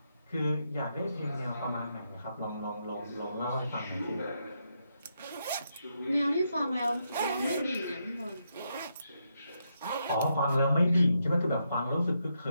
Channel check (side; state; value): both; inverted; correlation -0.81